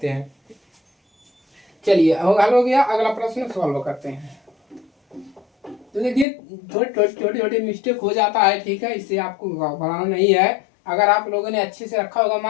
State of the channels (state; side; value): drops out; right; at 6.2 s